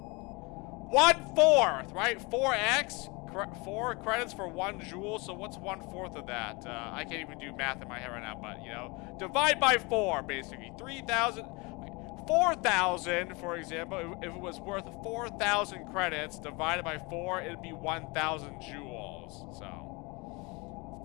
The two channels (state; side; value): quieter; right; 27.1 dB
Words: 1/4, right? 4x, 4 credits for 1 jewel. So what's 1/4 of that? I can't even do math in my head right now, but you know, divide by 4, basically. 3,000, 4,000, for example. If it was worth 4,000 credits divided by 4, it'd be 1,000 jewels. So,